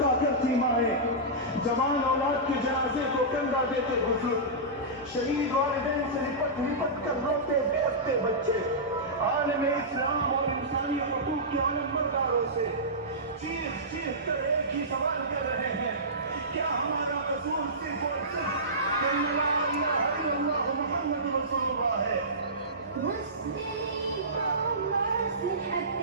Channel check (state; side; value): normal; both; correlation -0.18